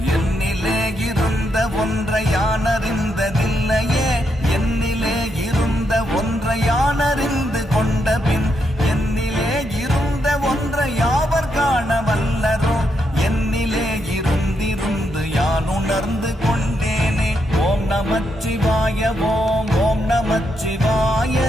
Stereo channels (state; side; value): normal; both; correlation 0.80